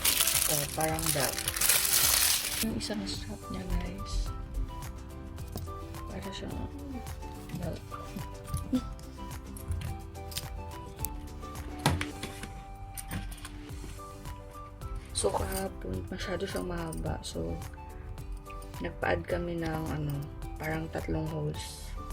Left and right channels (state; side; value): identical; both; correlation 1.00